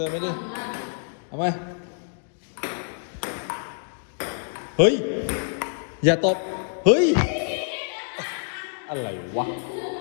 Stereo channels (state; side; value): silent; right; digital silence